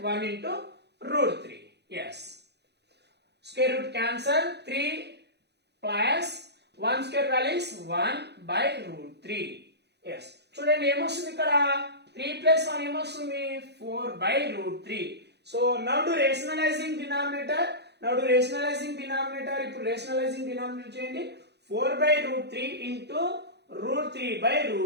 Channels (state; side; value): late; left; 0.49 ms